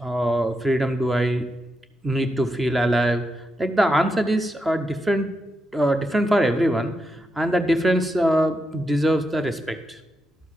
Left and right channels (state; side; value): normal; both; correlation 0.85